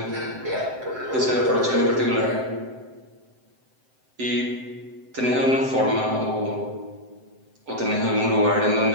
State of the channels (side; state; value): left; late; 7.8 ms